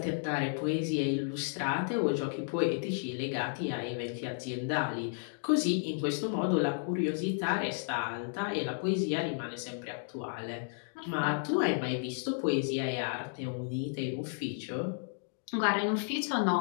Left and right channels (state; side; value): silent; right; digital silence